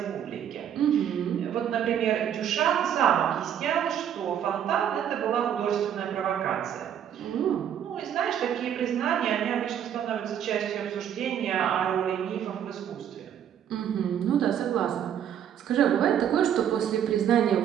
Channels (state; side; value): quieter; left; 9.4 dB